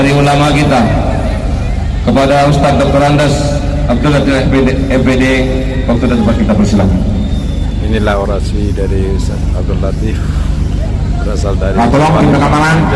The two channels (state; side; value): identical; both; correlation 1.00